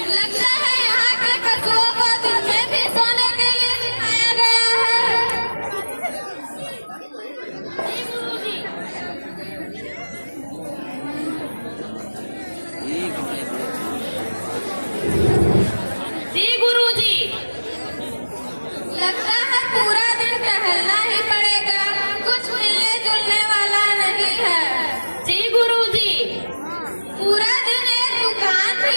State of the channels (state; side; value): inverted; both; correlation -1.00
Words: लगता है यहाँ के पशुओं को दिन में भी सोने के लिए सिखाया गया है। जी गुरुजी, लगता है पूरा दिन टहलना ही पड़ेगा, कुछ मिलने जुलने वाला नहीं है। जी गुरुजी, पूरा दिन एक दुकान भी